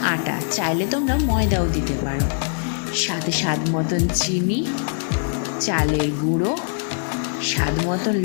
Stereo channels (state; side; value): silent; right; digital silence